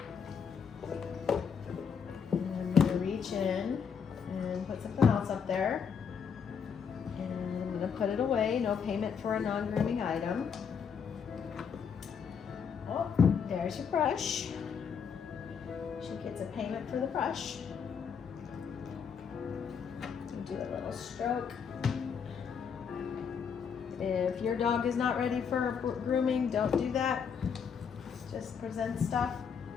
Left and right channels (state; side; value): quieter; right; 6.8 dB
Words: And I'm going to reach in and put something else up there. And I'm going to put it away. No payment for a non-grooming item. Oh, there's your brush. She gets a payment for the brush. Do a little stroke. If your dog is not ready for grooming, don't do that. Just present stuff.